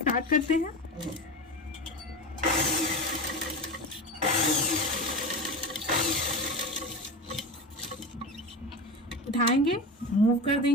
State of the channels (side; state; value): both; normal; correlation 0.25